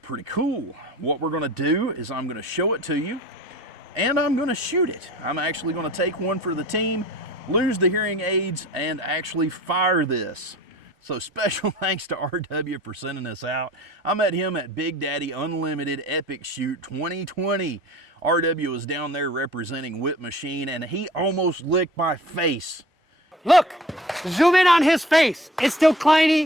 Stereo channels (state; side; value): normal; both; correlation 0.45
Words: cool. What we're going to do is I'm going to show it to you and I'm going to shoot it. I'm actually going to take one for the team, lose the hearing aids, and actually fire this. So special thanks to RW for sending this out. I met him at Big Daddy Unlimited Epic Shoot 2020. RW was down there representing Witt Machine and he almost licked my face. Look, zoom in on his face. It's still